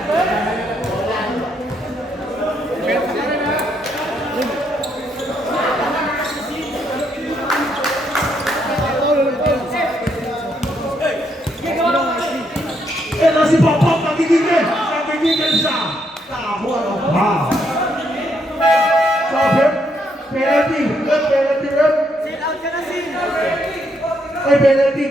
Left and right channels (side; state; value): both; normal; correlation 0.75